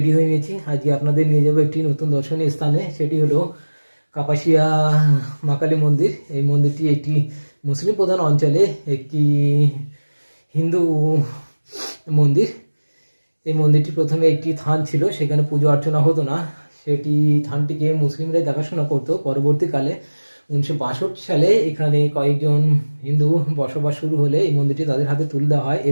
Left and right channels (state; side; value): inverted; both; correlation -1.00